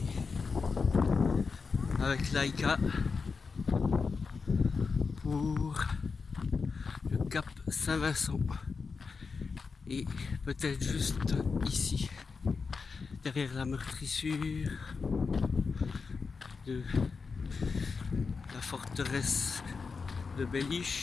avec Laika pour le Cap Saint-Vincent. Et peut-être juste ici, derrière la meurtrissure de la forteresse de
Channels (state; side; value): quieter; right; 4.9 dB